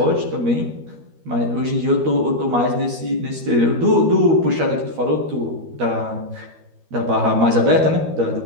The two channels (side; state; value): left; late; 13 ms